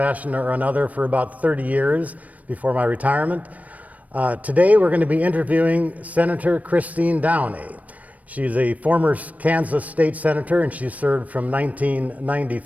or another for about 30 years before my retirement. Today we're going to be interviewing Senator Christine Downey. She's a former Kansas state senator, and she served from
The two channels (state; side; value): late; left; 0.071 ms